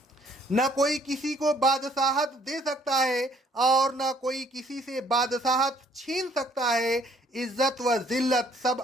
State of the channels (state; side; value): normal; both; correlation 0.62